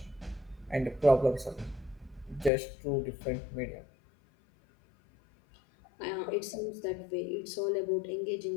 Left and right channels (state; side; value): drops out; right; at 2.5 s